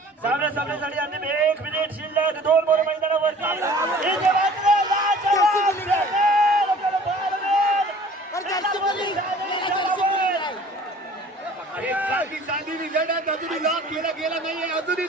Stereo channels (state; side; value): normal; both; correlation 0.49